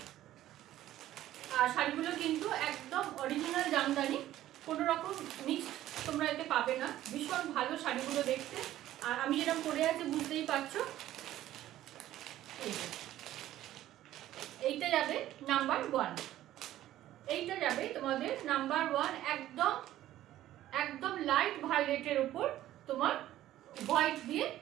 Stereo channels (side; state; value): left; quieter; 13.6 dB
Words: আর শাড়িগুলো কিন্তু একদম অরিজিনাল জামদানি, কোনো রকম মিক্সড তোমরা এতে পাবে না। ভীষণ ভালো শাড়িগুলো দেখতে। আর আমি যেরকম পরে আছি বুঝতেই পারছো। এইটা যাবে নাম্বার 1, এইটা যাবে তোমাদের নাম্বার 1, একদম একদম লাইট ভায়োলেটের উপর তোমার হোয়াইট দিয়ে